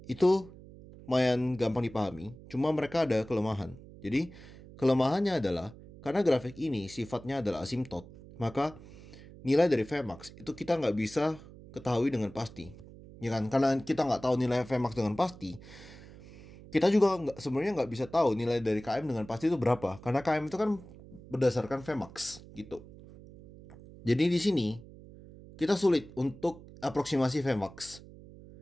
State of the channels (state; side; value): noise; right; hum, 18 dB below the sound